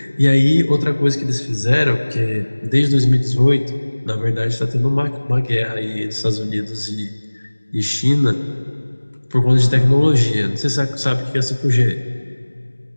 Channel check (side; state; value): both; inverted; correlation -1.00